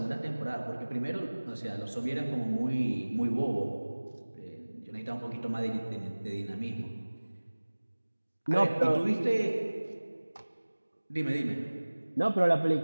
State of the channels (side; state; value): both; inverted; correlation -1.00